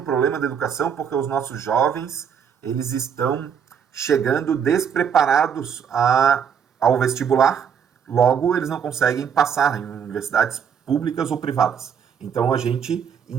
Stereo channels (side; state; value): left; quieter; 7.6 dB